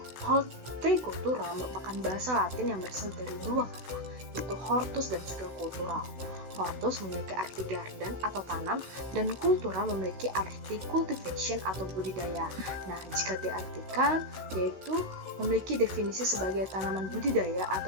hortikultura merupakan bahasa Latin yang berasal dari dua kata, yaitu hortus dan juga cultural. Hortus memiliki arti garden atau tanam, dan kultura memiliki arti cultivation atau budidaya. Nah, jika diartikan, yaitu memiliki definisi sebagai tanaman budidaya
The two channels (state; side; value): late; left; 16 ms